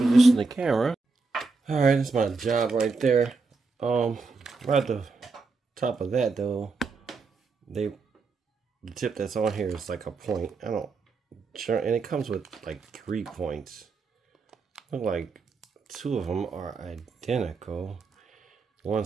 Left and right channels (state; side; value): quieter; left; 4.2 dB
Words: the camera. All right, that's my job right there. Right at the top of that though, the tip that's on here is like a point. I don't sure, and it comes with like 3 points. Look like 2 of them are identical. One